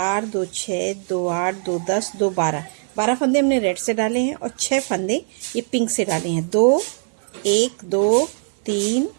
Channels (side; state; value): left; silent; 65 dB below the other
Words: 2 6 2 8 2 10 2 12 फंदे हमने रेड से डाले हैं और 6 फंदे ये पिंक से डाले हैं। 2 1 2 3